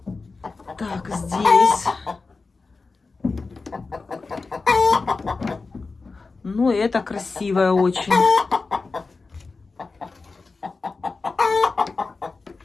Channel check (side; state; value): right; quieter; 4.1 dB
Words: Так, здесь. Ну, это красивое очень.